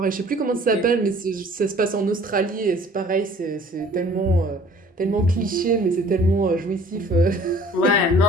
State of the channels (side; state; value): both; normal; correlation 0.52